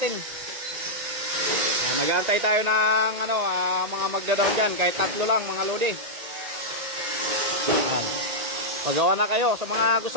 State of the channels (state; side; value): late; left; 1.8 ms